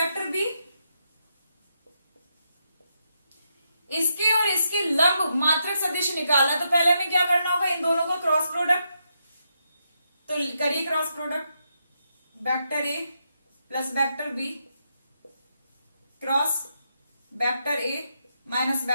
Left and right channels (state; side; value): inverted; both; correlation -0.81